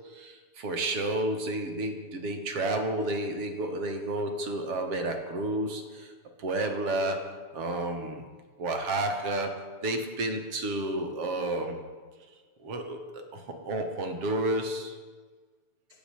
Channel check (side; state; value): left; late; 6.9 ms